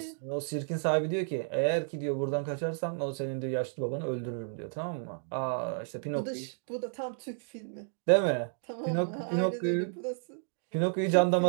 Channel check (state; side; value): silent; left; digital silence